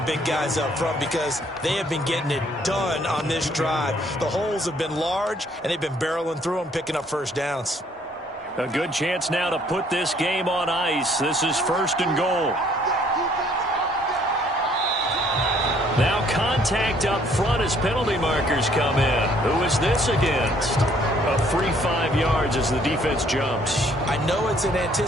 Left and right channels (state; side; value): normal; both; correlation 0.63